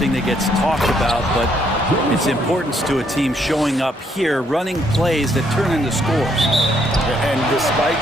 that gets talked about, but its importance to a team showing up here, running plays that turn into scores. And despite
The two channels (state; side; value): normal; both; correlation 0.71